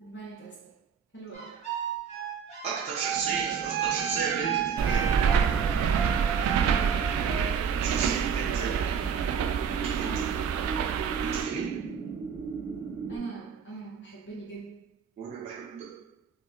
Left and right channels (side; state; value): left; quieter; 6.9 dB